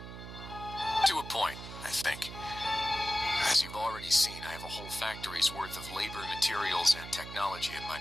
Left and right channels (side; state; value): right; noise; hum, 11 dB below the sound